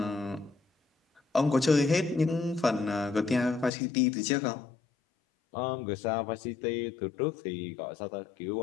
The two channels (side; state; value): right; drops out; at 3.7 s